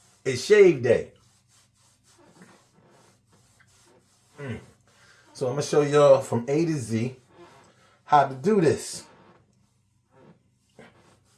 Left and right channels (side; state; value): both; identical; correlation 1.00